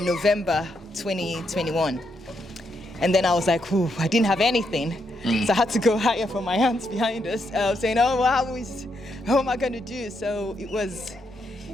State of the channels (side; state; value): both; normal; correlation 0.79